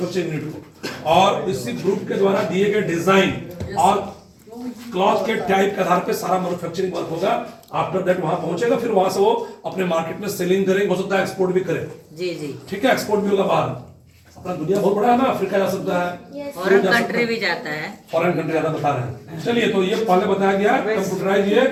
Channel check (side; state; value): both; identical; correlation 1.00